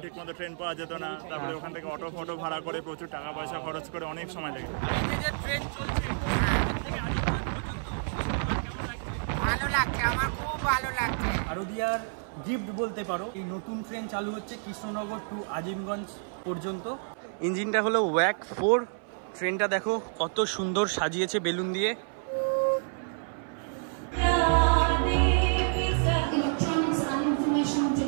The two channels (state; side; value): silent; left; 58 dB below the other